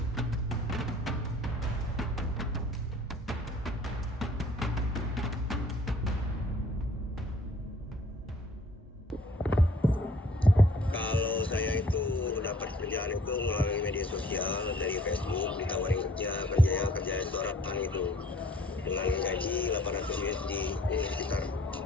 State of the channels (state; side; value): normal; both; correlation 0.56